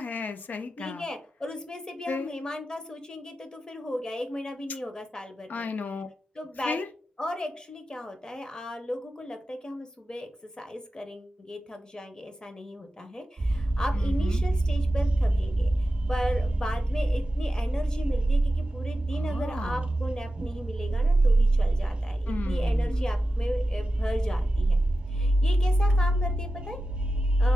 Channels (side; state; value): both; normal; correlation 0.92